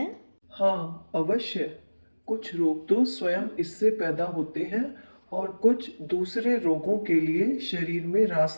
हाँ, अवश्य। कुछ रोग तो स्वयं इससे पैदा होते हैं और कुछ दूसरे रोगों के लिए शरीर में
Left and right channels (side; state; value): both; inverted; correlation -1.00